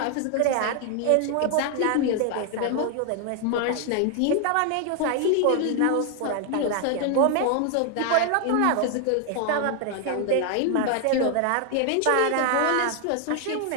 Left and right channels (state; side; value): different; both; correlation 0.00